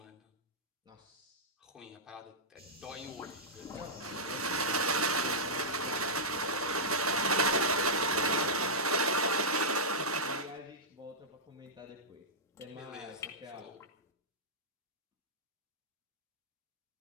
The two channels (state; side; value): normal; both; correlation -0.11